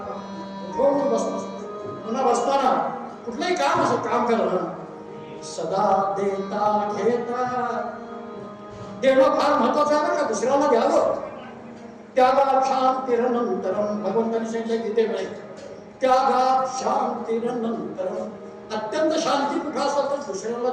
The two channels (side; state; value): both; identical; correlation 1.00